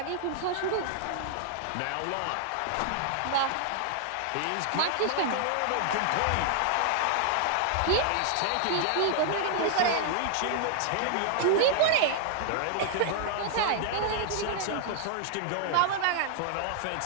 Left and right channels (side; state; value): both; different; correlation -0.01